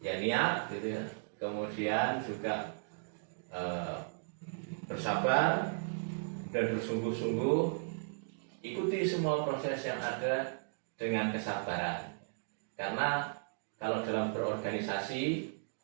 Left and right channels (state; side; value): silent; left; digital silence